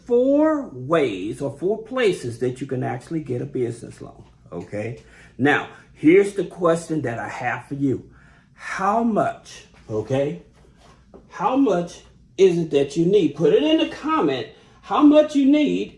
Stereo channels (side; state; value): both; identical; correlation 1.00